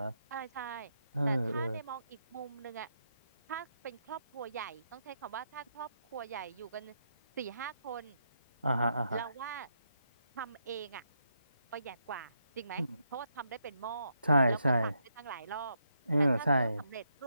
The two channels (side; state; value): both; inverted; correlation -0.80